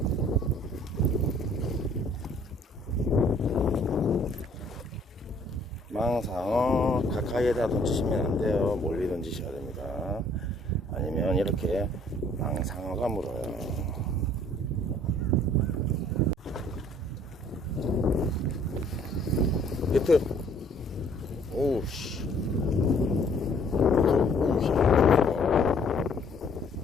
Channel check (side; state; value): both; normal; correlation 0.59